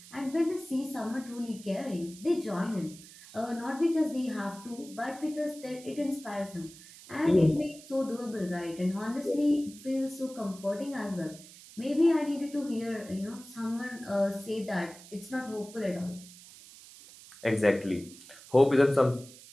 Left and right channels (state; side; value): noise; right; hiss, 19 dB below the sound